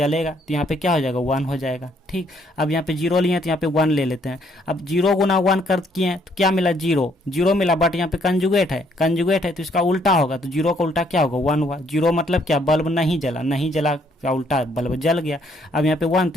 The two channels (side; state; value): both; normal; correlation 0.68